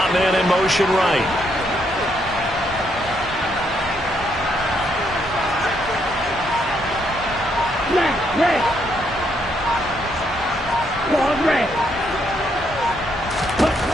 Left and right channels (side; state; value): both; normal; correlation 0.74